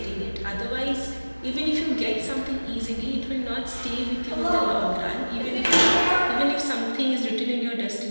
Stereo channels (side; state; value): both; inverted; correlation -1.00